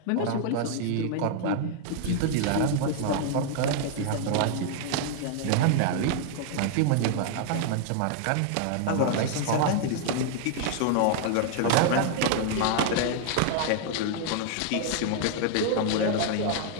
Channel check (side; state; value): both; different; correlation 0.00